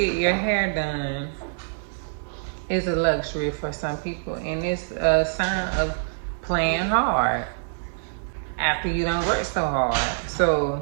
your hair done is a luxury for some people, and it's a sign of playing hard after you don't work so hard. So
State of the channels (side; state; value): left; silent; digital silence